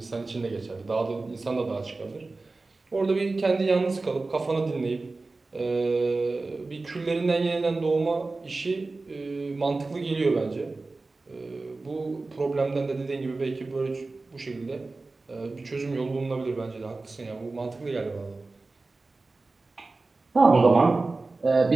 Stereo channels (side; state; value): left; quieter; 3.5 dB